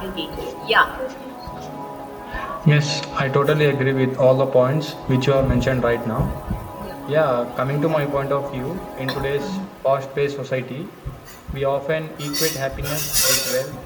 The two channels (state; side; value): identical; both; correlation 1.00